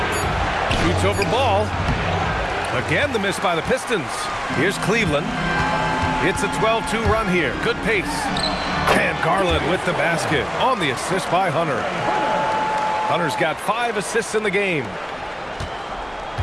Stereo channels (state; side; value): identical; both; correlation 1.00